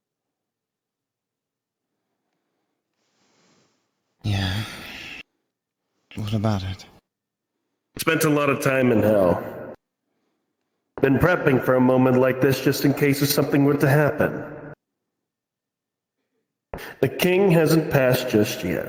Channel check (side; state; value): both; identical; correlation 1.00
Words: Yeah. What about it? Spent a lot of time in hell. Been prepping for a moment like this just in case if something were to happen. The king hasn't passed just